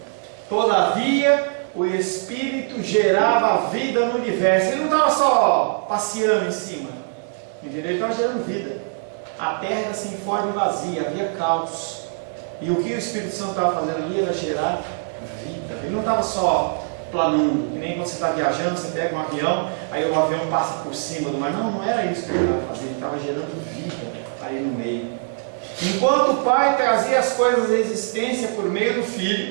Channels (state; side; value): silent; left; 64 dB below the other